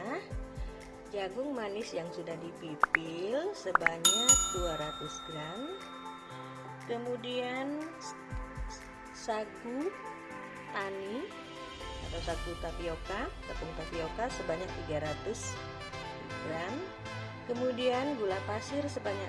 jagung manis yang sudah dipipil sebanyak 200 gram. Kemudian sagu tani atau sagu tapioka, tepung tapioka sebanyak 300 gram. Kemudian gula pasir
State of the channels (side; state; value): both; identical; correlation 1.00